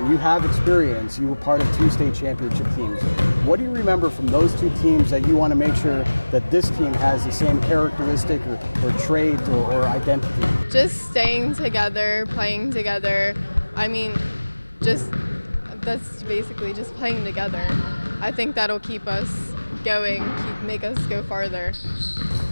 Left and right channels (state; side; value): inverted; both; correlation -1.00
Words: you have experience. You were part of 2 state championship teams. What do you remember from those 2 teams that you want to make sure that this team has the same characteristic or traits or identity? Just staying together, playing together. I mean, that's basically just playing together. I think that'll keep us going, make us go farther.